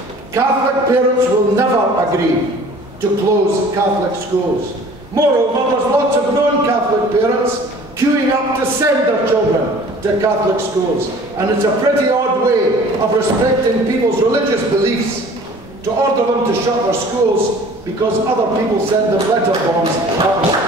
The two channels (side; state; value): both; normal; correlation 0.48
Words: Catholic parents will never agree to close Catholic schools. Moreover, there's lots of non-Catholic parents queuing up to send their children to Catholic schools. And it's a pretty odd way of respecting people's religious beliefs to order them to shut their schools because other people send them letter